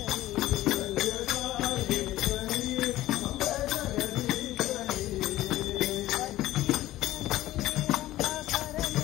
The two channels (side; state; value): right; quieter; 15.6 dB